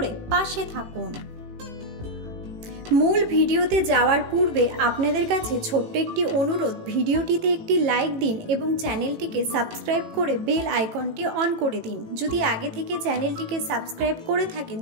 পাশে থাকুন। মূল ভিডিওতে যাওয়ার পূর্বে আপনাদের কাছে ছোট্ট একটি অনুরোধ, ভিডিওটিতে একটি লাইক দিন এবং চ্যানেলটিকে সাবস্ক্রাইব করে বেল আইকনটি অন করে দিন। যদি আগে থেকে চ্যানেলটিকে সাবস্ক্রাইব করে থাকেন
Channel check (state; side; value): late; left; 18 ms